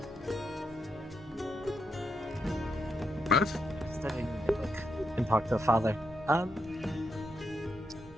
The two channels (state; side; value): normal; both; correlation 0.81